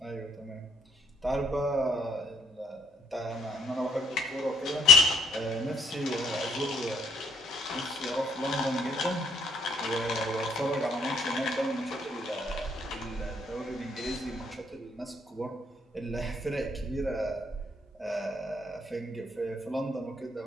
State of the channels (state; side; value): normal; both; correlation 0.65